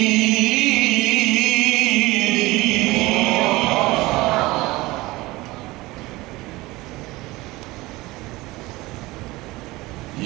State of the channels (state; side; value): quieter; left; 20.4 dB